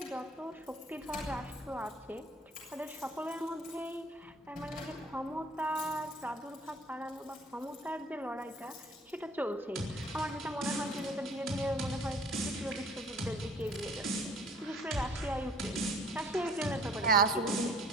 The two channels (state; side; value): normal; both; correlation 0.53